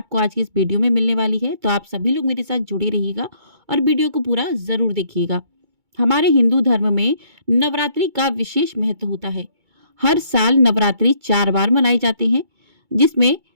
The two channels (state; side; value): late; left; 2.2 ms